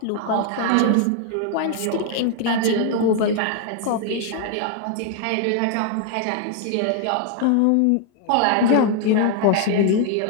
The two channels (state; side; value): different; both; correlation 0.00